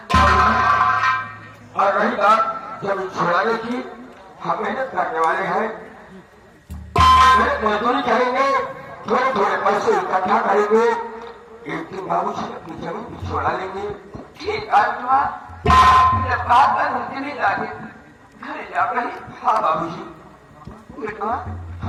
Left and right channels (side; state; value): both; identical; correlation 1.00